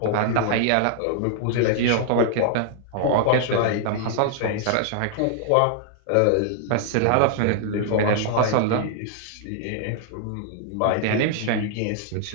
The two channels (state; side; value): different; both; correlation -0.01